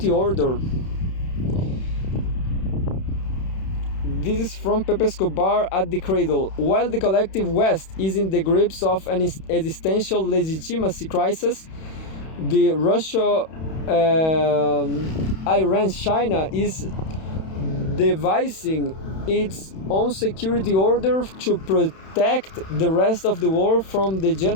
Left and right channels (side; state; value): right; late; 31 ms